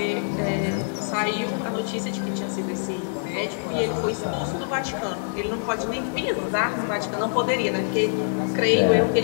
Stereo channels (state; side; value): silent; right; digital silence